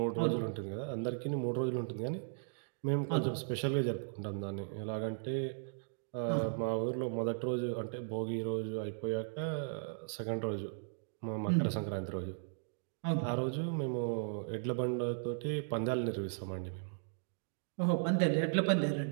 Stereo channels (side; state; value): left; silent; digital silence